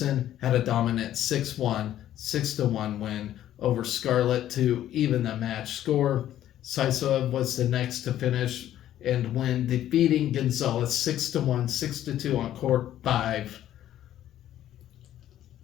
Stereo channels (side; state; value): right; quieter; 12.1 dB